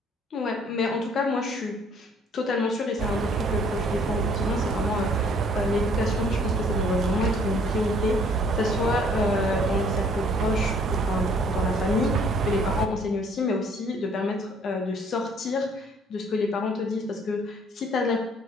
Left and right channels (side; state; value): both; normal; correlation 0.59